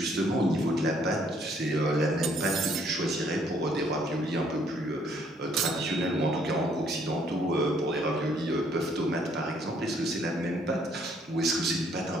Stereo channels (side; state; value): both; normal; correlation 0.65